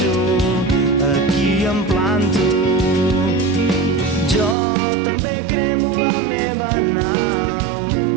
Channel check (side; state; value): left; drops out; at 4.5 s